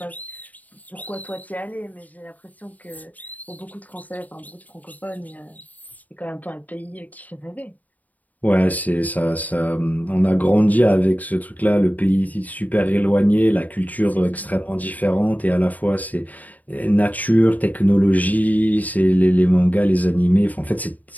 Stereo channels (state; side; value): late; right; 0.077 ms